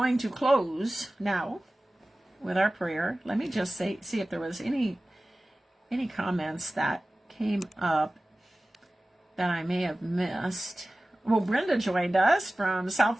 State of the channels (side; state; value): both; normal; correlation 0.97